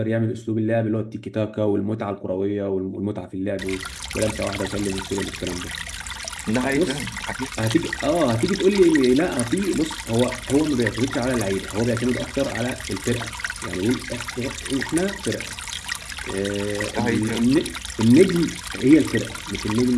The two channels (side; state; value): both; identical; correlation 1.00